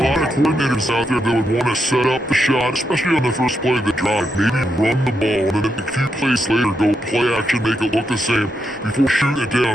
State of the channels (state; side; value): normal; both; correlation 0.82